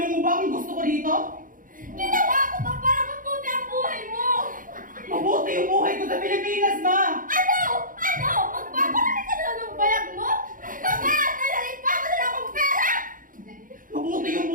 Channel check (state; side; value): late; left; 0.40 ms